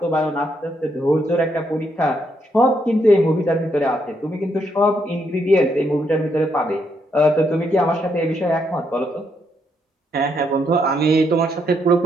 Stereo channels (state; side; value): normal; both; correlation 0.76